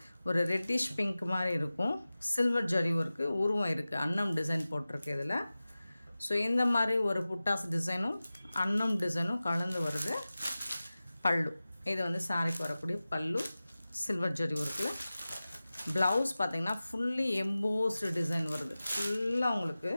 ஒரு ரெட்டிஷ் பிங்க் மாதிரி இருக்கும். சில்வர் ஜரி ஒர்க்கு உருவம் இருக்குது, அன்னம் டிசைன் போட்டிருக்கு இதில். ஸோ இந்த மாதிரி ஒரு புட்டாஸ் டிசைனும் அன்னம் டிசைனும் கலந்து வருது. பல்லு இது வந்து சாரிக்கு வரக்கூடிய பல்லு சில்வர் ஜரி ஒர்க்கில். ப்ளவுஸ் பார்த்திங்கன்னா ஃபுல்லி எம்போஸ்டு டிசைன் வருது. ஃபுல்லாக உங்களுக்கு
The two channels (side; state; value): both; inverted; correlation -0.96